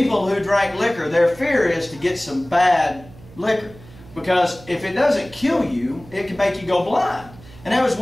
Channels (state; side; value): noise; right; hum, 21 dB below the sound